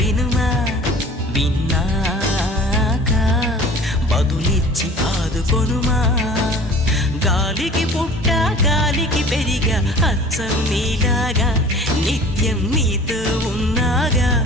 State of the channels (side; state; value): both; normal; correlation 0.45